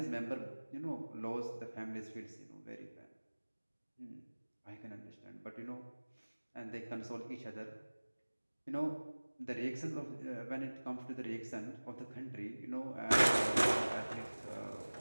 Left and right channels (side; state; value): both; inverted; correlation -1.00